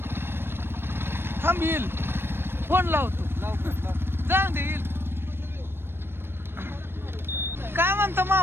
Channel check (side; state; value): left; late; 0.11 ms